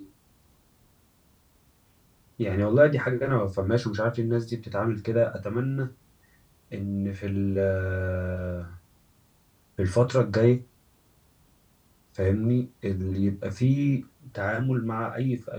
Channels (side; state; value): both; identical; correlation 1.00